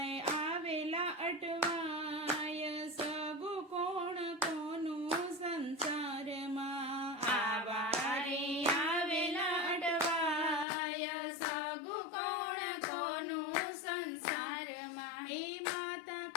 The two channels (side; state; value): right; drops out; at 10.7 s